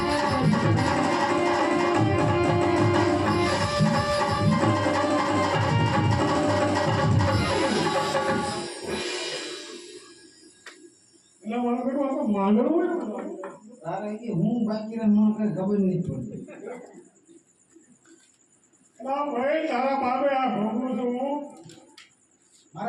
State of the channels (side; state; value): both; identical; correlation 1.00